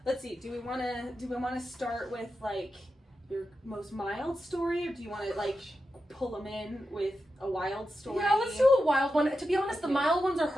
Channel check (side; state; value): both; normal; correlation 0.89